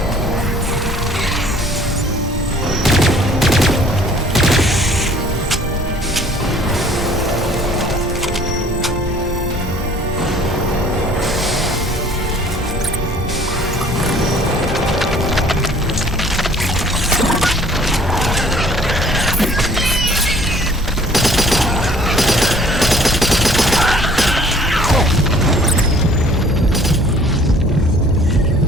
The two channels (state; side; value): normal; both; correlation 0.54